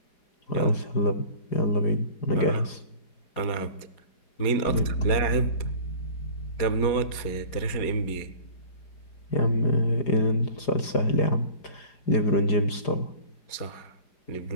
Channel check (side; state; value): right; late; 4.9 ms